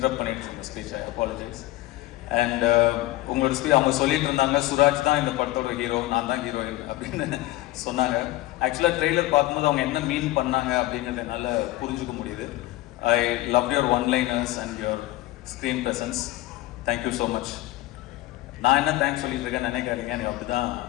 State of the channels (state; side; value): quieter; right; 17.1 dB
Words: பண்ணிட்டு இருந்தேன் ஸ்பீச், ஐ அப்பாலஜைஸ். அண்ட் உங்களோட ஸ்பீச் அவங்க சொல்லிட்டு இருந்தாங்க, சுராஜ் தான் இந்த படத்தோட ஹீரோ, நான் தான் ஹீரோயின் அப்படின்னு சொன்னாங்க. ஆக்சுவலாக ட்ரெய்லர் பார்க்கும்போது அவங்க என்ன மீன் பண்ணாங்க அப்படிங்கிறத என்னால் புரிஞ்சுக்க முடியுது. I love your one-liners and your screen presence. Thank you so much. நான் என்ன தேங்க்ஸ் சொல்லிட்டு இருக்கேன் நினைக்காதீங்க, எனக்கு அப்படி தான்